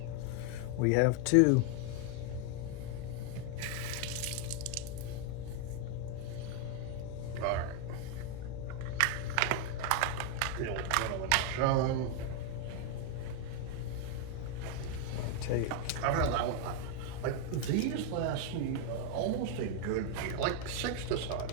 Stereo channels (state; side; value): different; both; correlation 0.01